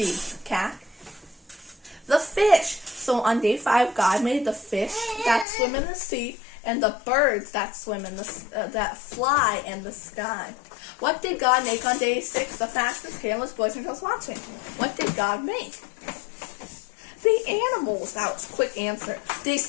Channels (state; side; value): drops out; right; at 5.5 s